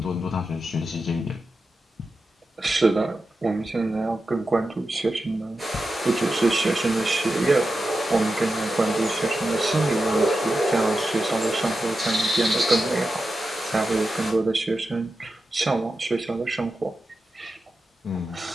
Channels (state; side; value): normal; both; correlation 0.91